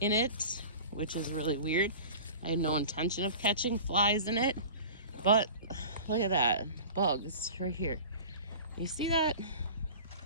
in it, which is really weird. I had no intention of catching flies in it, but look at that, bugs right here. You see that?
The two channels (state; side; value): inverted; both; correlation -0.38